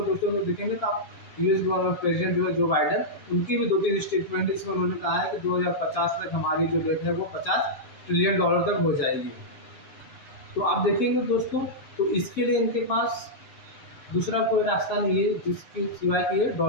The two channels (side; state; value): right; late; 7.4 ms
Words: दोस्तों में देखेंगे तो आप यूएस गवर्नमेंट प्रेसिडेंट जो है जो बाइडन, उनकी भी 2-3 स्टेटमेंट इसमें उन्होंने कहा है कि 2050 तक हमारी जो डेट है वो 50 ट्रिलियन डॉलर तक हो जाएगी। तो आप देखेंगे दोस्तों, तो इसके लिए इनके पास दूसरा कोई रास्ता नहीं है जिसके सिवाय कि ये